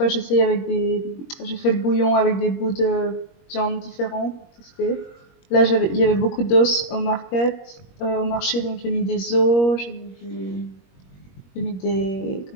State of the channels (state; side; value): late; right; 21 ms